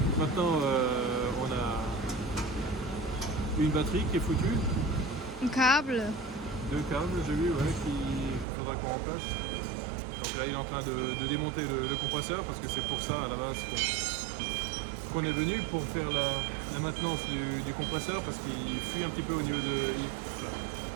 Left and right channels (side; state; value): left; drops out; at 8.5 s